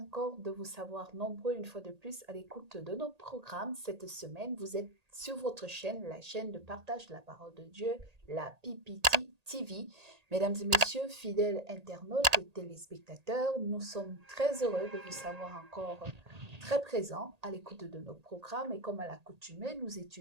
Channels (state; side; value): late; left; 1.8 ms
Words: de vous savoir nombreux une fois de plus à l'écoute de nos programmes. Cette semaine, vous êtes sur votre chaîne, la chaîne de partage de la parole de Dieu, la PPT TV. Mesdames et messieurs, fidèles internautes et téléspectateurs, nous sommes très heureux de vous savoir encore très présents à l'écoute de nos programmes. Et comme à l'accoutumée, nous